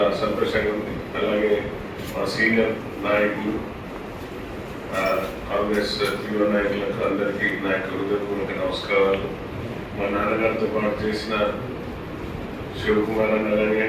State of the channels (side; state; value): both; identical; correlation 1.00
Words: సంతోషంగా ఉంది. అలాగే మా సీనియర్ నాయకులు, కాంగ్రెస్ యువ నాయకులకు అందరికీ నా యొక్క హృదయపూర్వక నమస్కారాలు. మా నాన్నగారితో పాటు చేసిన శివకుమార్ అన్న